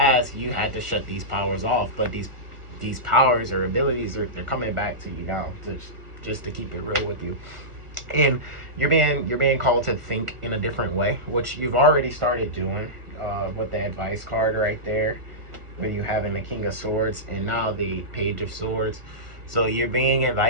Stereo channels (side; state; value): left; late; 1.4 ms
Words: you had to shut these powers off, but these powers or abilities they're coming back to you now, to just to keep it real with you. And you're being called to think in a different way, which you've already started doing, with the advice card right there, where you having the King of Swords and now the Page of Swords. So you're being